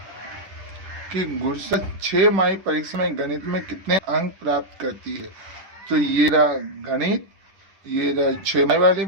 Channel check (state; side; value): late; left; 10 ms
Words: कि गुरसा 6 परीक्षा में गणित में कितने अंक प्राप्त करती है। तो ये रहा गणित, ये रहा 6 वाली,